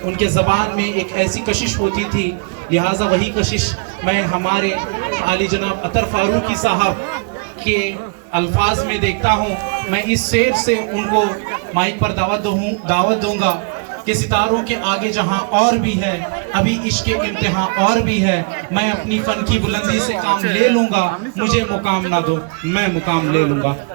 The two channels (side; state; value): left; quieter; 35.3 dB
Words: उनके ज़बान में एक ऐसी कशिश होती थी, लिहाजा वही कशिश मैं हमारे आली जनाब अतर फारूकी साहब के अल्फाज में देखता हूँ। मैं इस शेर से उनको माइक पर दावत दूंगा कि सितारों के आगे जहाँ और भी है, अभी इश्क इम्तिहान और भी है। मैं अपनी फन की बुलंदी से काम ले लूंगा, मुझे मुकाम ना दो मैं मुकाम ले लूंगा।